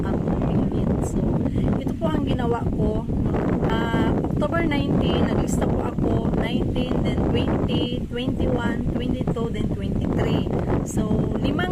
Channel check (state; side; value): identical; both; correlation 1.00